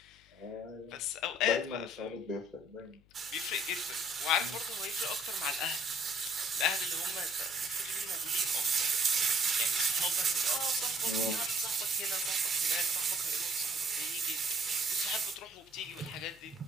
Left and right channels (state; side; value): noise; left; hum, 29 dB below the sound